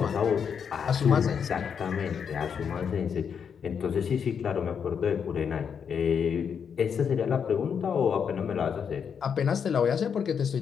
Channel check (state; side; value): quieter; right; 7.0 dB